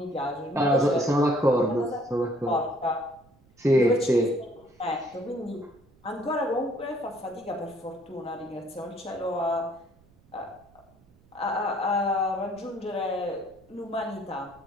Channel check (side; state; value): right; noise; rumble, 29 dB below the sound